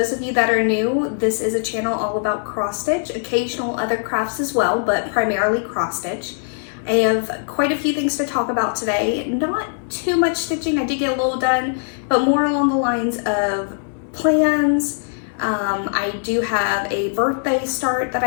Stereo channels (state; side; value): silent; right; digital silence